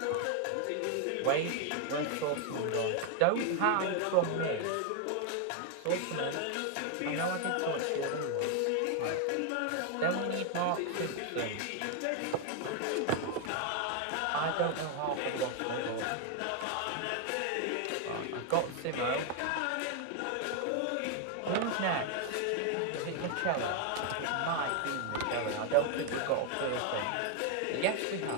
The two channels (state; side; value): different; both; correlation 0.00